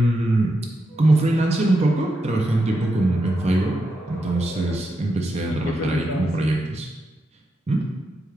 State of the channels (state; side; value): normal; both; correlation 0.85